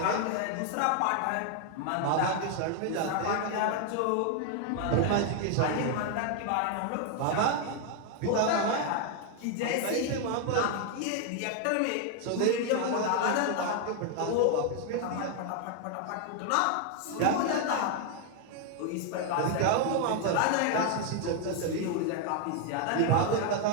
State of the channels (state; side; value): different; both; correlation 0.00